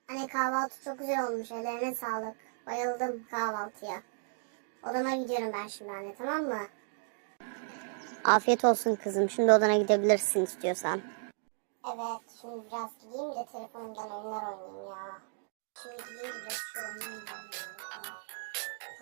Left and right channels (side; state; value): left; silent; digital silence